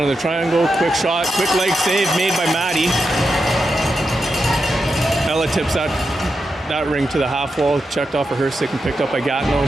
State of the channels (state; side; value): normal; both; correlation 0.87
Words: of the triangle, quick shot, quick leg save made by Maddie. Ella tips that ring to the half wall, checked off of her stick and picked up by Gatineau.